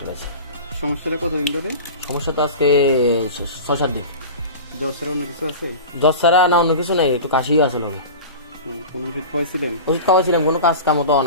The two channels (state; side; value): inverted; both; correlation -0.32